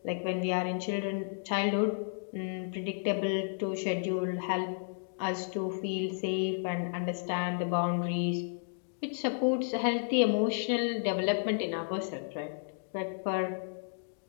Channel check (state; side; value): silent; right; digital silence